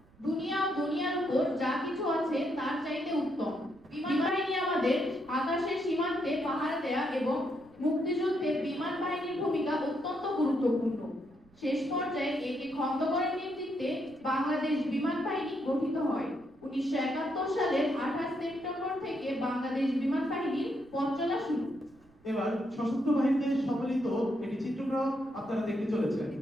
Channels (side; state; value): right; noise; rumble, 29 dB below the sound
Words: দুনিয়া ও দুনিয়ার উপর যা কিছু আছে তার চাইতে উত্তম। বিমান বাহিনী আমাদের আকাশের সীমান্তে পাহারা দেয়া এবং মুক্তিযুদ্ধে বিমান বাহিনীর ভূমিকা অত্যন্ত গুরুত্বপূর্ণ। শেষ পর্যায়ে একে খন্দকারের নেতৃত্বে বাংলাদেশ বিমান বাহিনী গঠিত হয়। 1971 সালের 28 সেপ্টেম্বর থেকে বাংলাদেশ বিমান বাহিনীর পথ চলা শুরু। এবার সশস্ত্র বাহিনীতে সম্মিলিত একটি চিত্রগ্রাম আপনারা দেখতে চলেছেন।